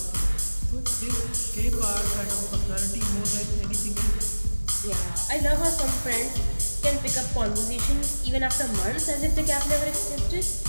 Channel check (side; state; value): both; inverted; correlation -1.00